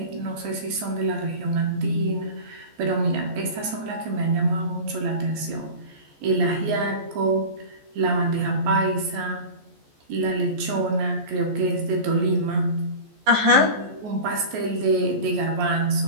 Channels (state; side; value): late; left; 14 ms